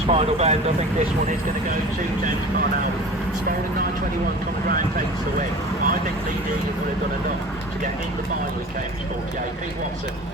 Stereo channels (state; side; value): normal; both; correlation 0.39